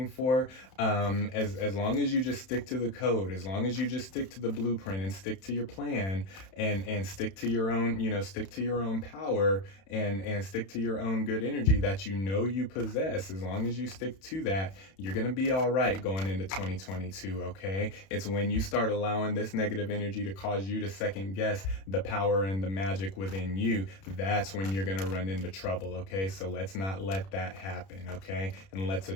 for, as long as you just stick to the code, as long as you just stick to the blueprint and stick to your plan and stick to your own power and stick to your own good energy that you possess, as long as you stick to that, you're gonna be all right going into 2022. Okay, it's when you start allowing this negative energy to cause you to second guess the power and the magic within you, that's when you're going to run into trouble. Okay, so let's not let that happen. Okay, and let's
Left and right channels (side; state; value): right; late; 31 ms